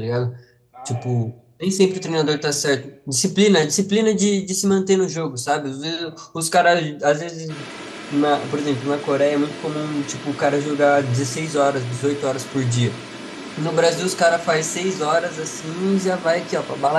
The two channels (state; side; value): identical; both; correlation 1.00